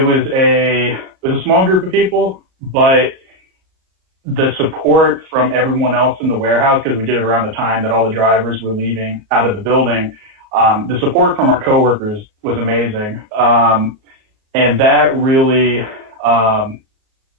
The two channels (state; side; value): late; left; 37 ms